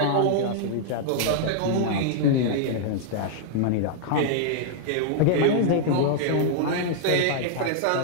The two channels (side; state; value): both; different; correlation -0.01